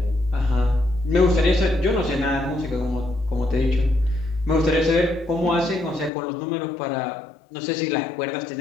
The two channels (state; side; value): drops out; right; at 6.1 s